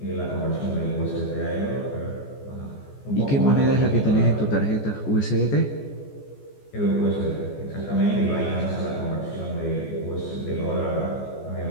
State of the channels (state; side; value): late; right; 14 ms